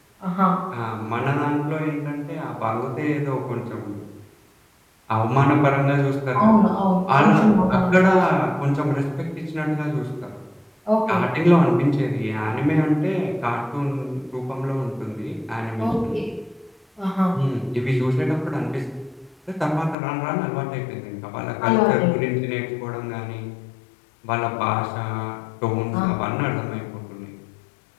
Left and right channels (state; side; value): drops out; right; at 20.0 s